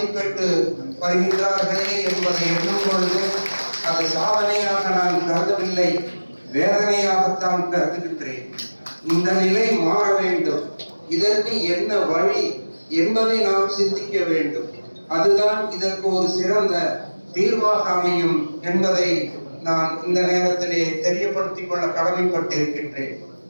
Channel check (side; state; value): both; inverted; correlation -1.00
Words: வருகின்றார்களே என்பதை எண்ணும் பொழுது அது சாதனையாக நான் கருதவில்லை, வேதனையாகத்தான் கருதுகின்றேன். இந்த நிலை மாற வேண்டும். இதற்கு என்ன வழி என்பதை நாம் சிந்திக்க வேண்டும். அதுதான் இதற்கு ஒரு சிறந்த தீர்வாக அமையும் என்பதை நான் இந்த நேரத்திலே தெரியப்படுத்திக் கொள்ள கடமைப்பட்டிருக்கின்றேன்.